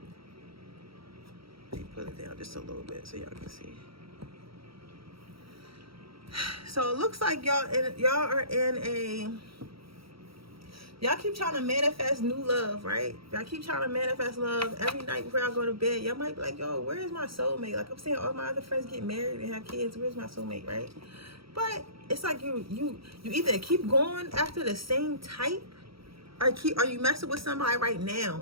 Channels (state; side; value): late; left; 0.75 ms